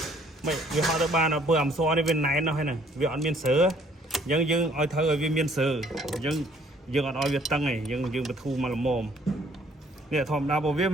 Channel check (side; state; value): both; normal; correlation 0.61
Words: mày vì họ tới ba nó vừa làm so đi bên này nó hay này vì họ miền sớ dân ở thơ ở bên miền sớ dân ở việt tăng này dân bị thu mà làm mồm nè thòm đa bộ viết